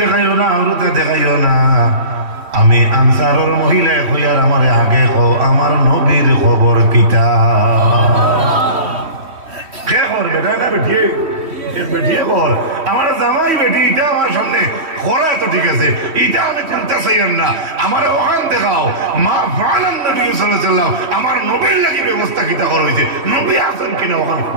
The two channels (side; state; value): left; late; 3.1 ms